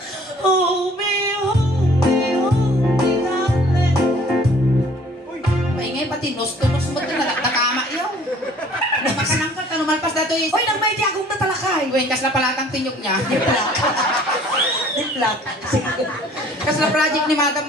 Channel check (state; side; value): normal; both; correlation 0.54